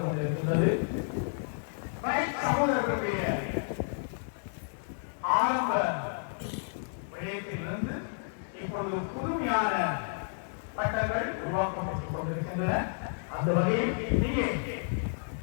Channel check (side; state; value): right; silent; digital silence